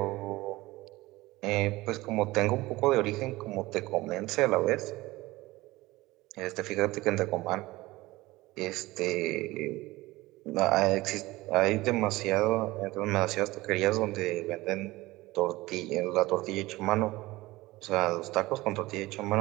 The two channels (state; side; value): quieter; left; 19.4 dB